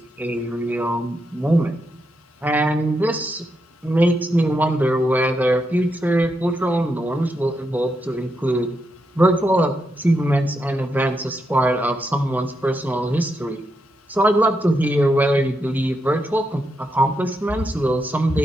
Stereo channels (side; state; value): both; normal; correlation 0.83